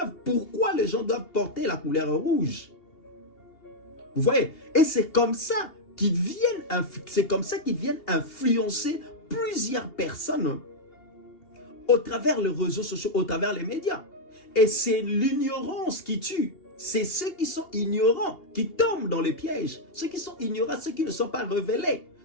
pourquoi les gens doivent porter la couleur rouge. Vous voyez? Et c'est comme ça qu'ils viennent influencer plusieurs personnes au travers les réseaux sociaux, au travers les médias. Et c'est l'ignorance qui tue. C'est ceux qui sont ignorants qui tombent dans les pièges. Ceux qui sont ignorants, ceux qui ne sont pas révélés.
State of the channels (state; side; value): late; right; 2.8 ms